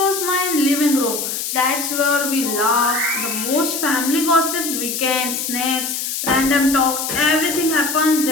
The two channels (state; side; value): noise; left; hiss, 3 dB below the sound